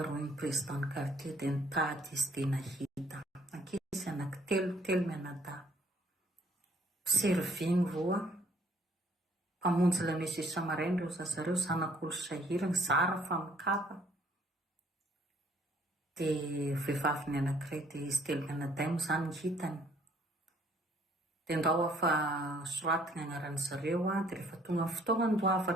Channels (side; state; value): both; normal; correlation 0.62